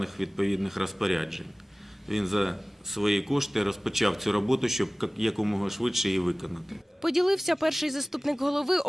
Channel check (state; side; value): normal; both; correlation 0.98